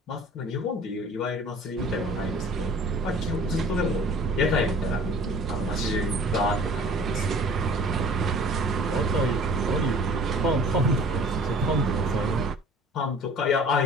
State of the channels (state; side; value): normal; both; correlation 0.48